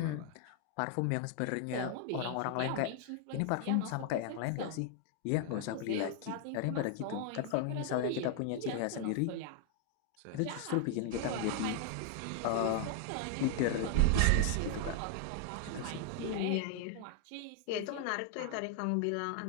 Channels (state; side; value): different; both; correlation 0.00